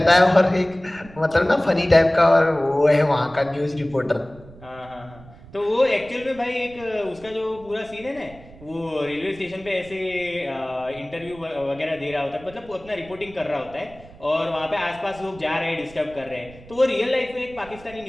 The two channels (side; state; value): right; noise; rumble, 21 dB below the sound